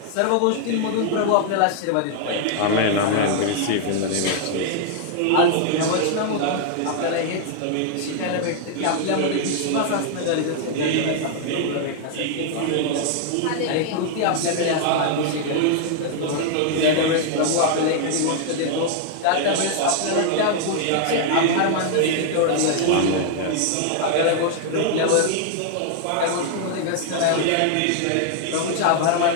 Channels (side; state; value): both; different; correlation 0.00